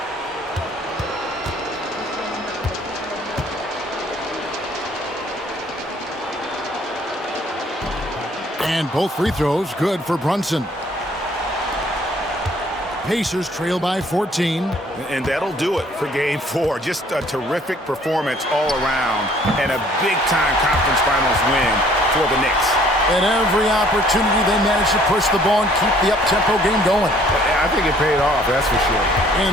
And both free throws good for Brunson. Pacers trail by 14. And that'll do it for Game 4. Just a terrific performance all around and a big-time conference finals win for the Knicks. At every opportunity, they managed to push the ball and keep the up-tempo game going. I think it paid off, that's for sure.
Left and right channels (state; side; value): normal; both; correlation 0.59